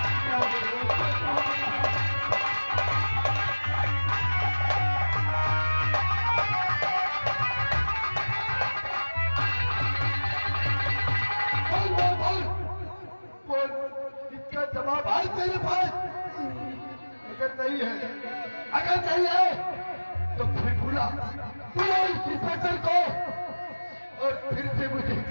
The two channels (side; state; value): both; inverted; correlation -1.00